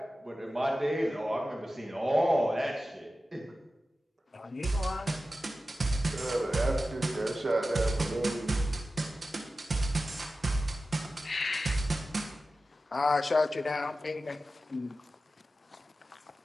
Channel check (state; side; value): normal; both; correlation 0.94